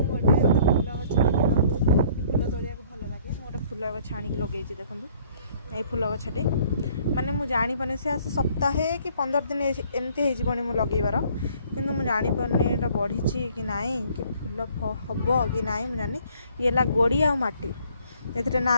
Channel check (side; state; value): both; inverted; correlation -0.59